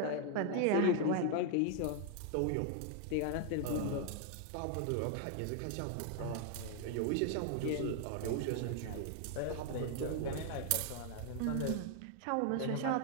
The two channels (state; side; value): different; both; correlation 0.00